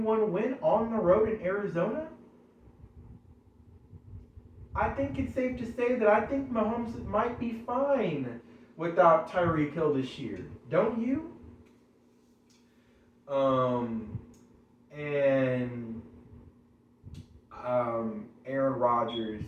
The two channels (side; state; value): both; identical; correlation 1.00